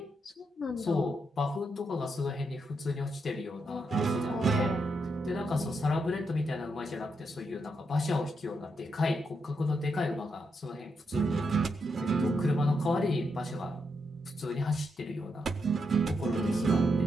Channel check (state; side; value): normal; both; correlation 0.82